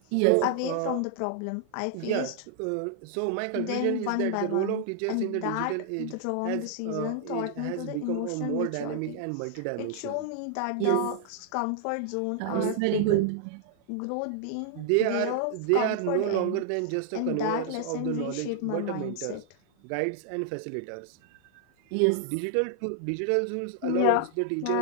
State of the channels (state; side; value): different; both; correlation 0.00